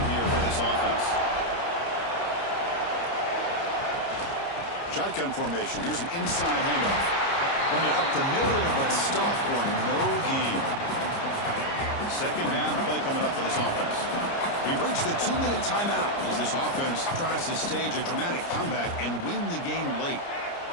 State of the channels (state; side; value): late; right; 30 ms